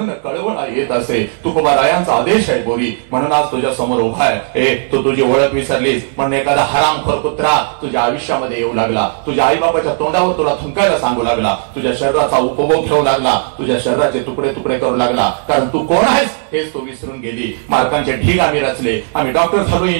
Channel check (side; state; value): left; silent; 66 dB below the other